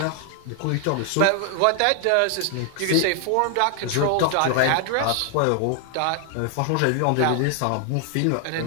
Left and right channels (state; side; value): different; both; correlation 0.00